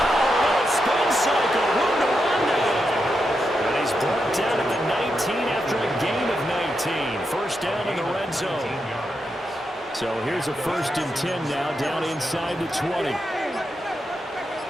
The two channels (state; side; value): normal; both; correlation 0.85